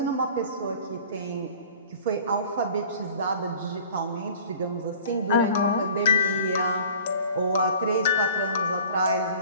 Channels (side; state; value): both; inverted; correlation -0.46